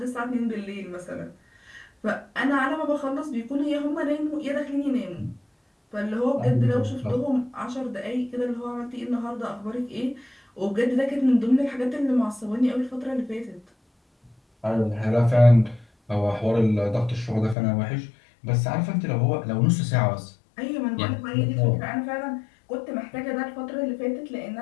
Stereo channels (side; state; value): right; drops out; at 17.6 s